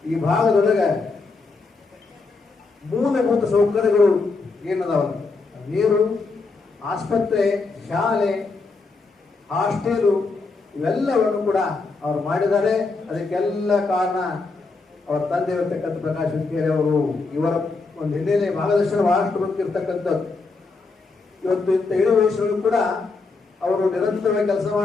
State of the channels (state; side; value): quieter; right; 4.0 dB